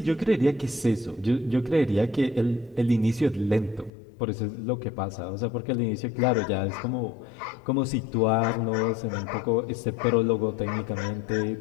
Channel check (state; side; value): drops out; right; at 3.9 s